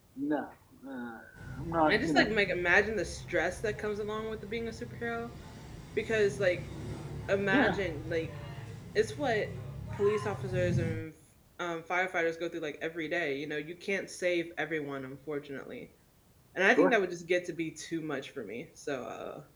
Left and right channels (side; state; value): both; identical; correlation 1.00